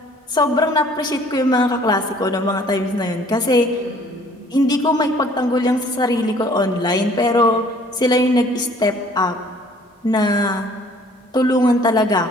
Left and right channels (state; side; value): normal; both; correlation 0.56